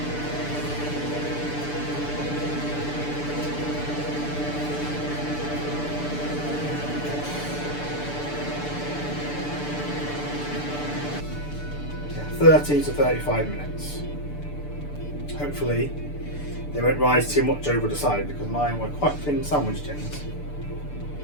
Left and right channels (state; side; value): late; right; 6.8 ms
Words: Yeah, 30 to 35 minutes. Hopefully they won't rise too much over the side because mine were quite thin sandwich tins.